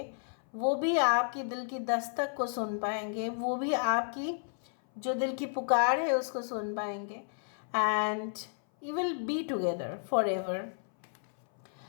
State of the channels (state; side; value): silent; right; 56 dB below the other